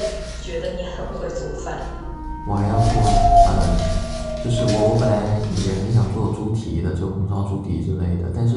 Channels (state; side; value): identical; both; correlation 1.00